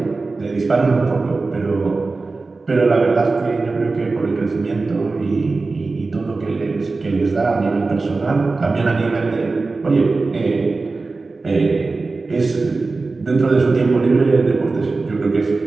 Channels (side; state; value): left; quieter; 3.8 dB